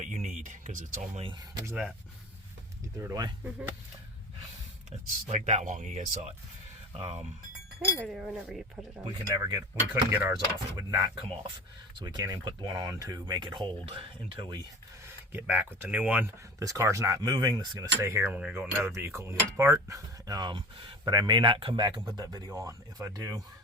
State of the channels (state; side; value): normal; both; correlation 0.35